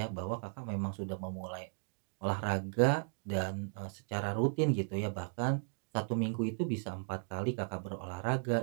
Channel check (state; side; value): silent; left; digital silence